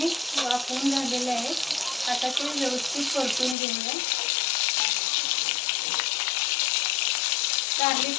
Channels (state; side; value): drops out; right; at 3.6 s